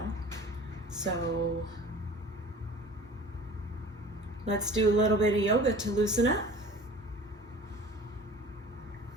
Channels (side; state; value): both; normal; correlation 0.43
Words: so let's do a little bit of yoga to loosen up.